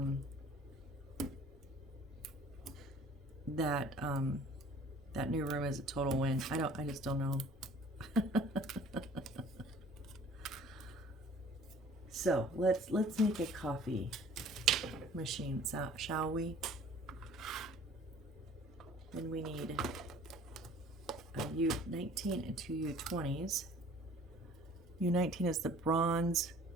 that new room as a total win. I just don't know. So let's make a coffee machine, shall we? Then we need a U19 and 2 U20s. U19 is the bronze,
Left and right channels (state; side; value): normal; both; correlation 0.51